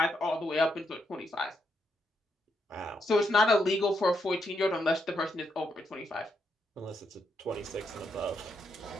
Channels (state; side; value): normal; both; correlation 0.80